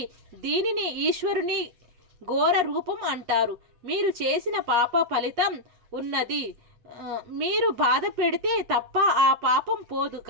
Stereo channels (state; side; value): late; left; 8.3 ms